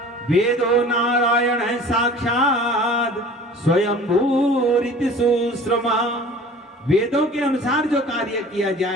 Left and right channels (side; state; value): both; normal; correlation 0.44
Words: वेदो नारायण है साक्षात स्वयंभूरिति सुश्रमा। वेदों के अनुसार जो कार्य किया